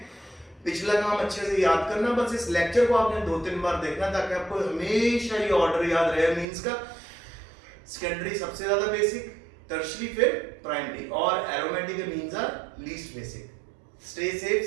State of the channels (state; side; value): drops out; left; at 6.5 s